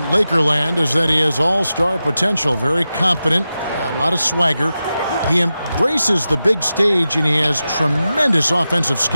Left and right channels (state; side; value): inverted; both; correlation -0.92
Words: Lakerland is that he has all-star potential, very confident, a lot of swagger. He embraces the big stage, and he has tremendous offensive